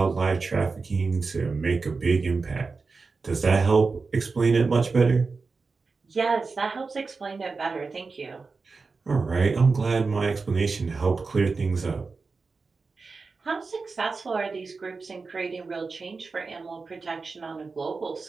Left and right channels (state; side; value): quieter; left; 4.3 dB